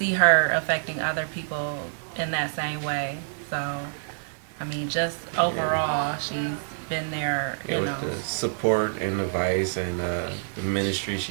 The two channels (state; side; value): silent; left; digital silence